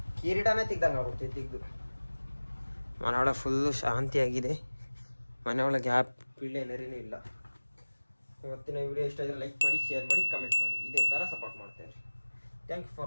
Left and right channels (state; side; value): inverted; both; correlation -1.00